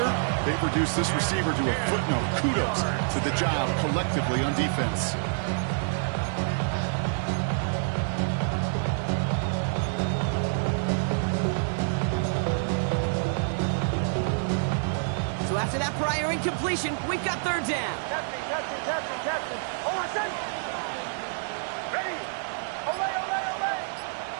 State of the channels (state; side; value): silent; left; digital silence